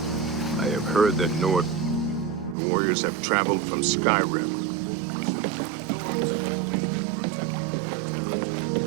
I have heard that Nord warriors have traveled from Skyrim with orc mercenaries. The Nords have always been protective of their territory.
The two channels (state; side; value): drops out; left; at 2.6 s